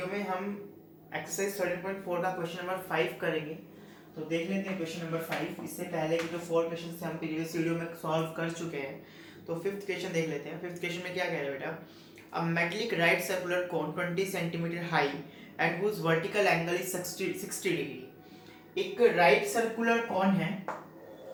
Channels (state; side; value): identical; both; correlation 1.00